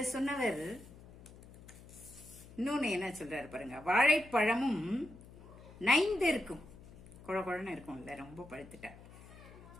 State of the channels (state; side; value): noise; left; hum, 19 dB below the sound